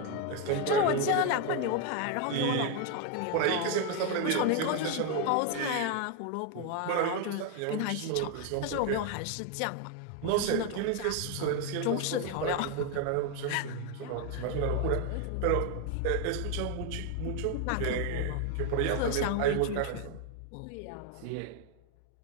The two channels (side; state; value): both; different; correlation 0.01